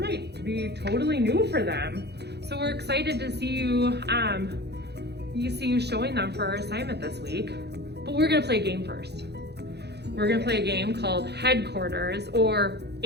be totally new for them. So we're excited to see you, showing them for our assignment this week. But we're gonna play a game first. We're gonna play a game called Headquarters, or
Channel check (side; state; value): left; late; 0.48 ms